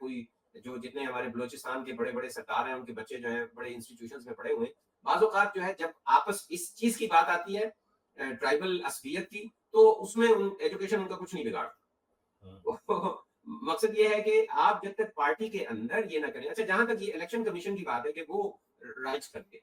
جو جتنے ہمارے بلوچستان کے بڑے بڑے سردار ہیں ان کے بچے جو ہیں بڑے انسٹیٹیوشنز میں پڑھے ہوئے ہیں, بعض اوقات جو ہے جب آپس اس چیز کی بات آتی ہے ٹرائبل عصبیت کی, تو اس میں ایجوکیشن ان کا کچھ نہیں بگاڑتا. مقصد یہ ہے کہ آپ جب تک پارٹی کے اندر یہ نہ کریں. اچھا, جہاں تک یہ الیکشن کمیشن کی بات ہے کہ وہ رائٹس کرتے,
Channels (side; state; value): both; identical; correlation 1.00